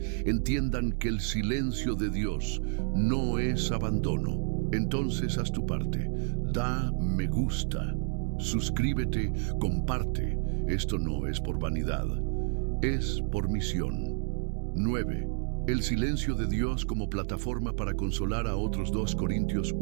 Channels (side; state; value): left; silent; 58 dB below the other